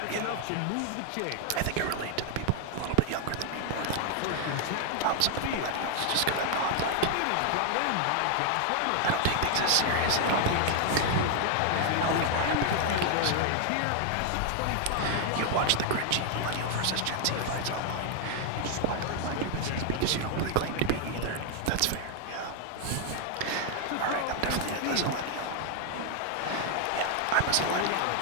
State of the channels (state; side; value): different; both; correlation 0.00